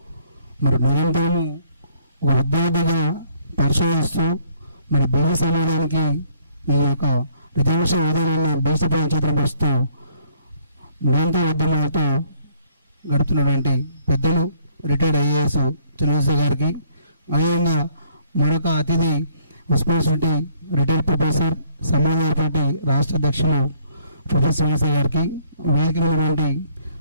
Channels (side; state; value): both; inverted; correlation -0.64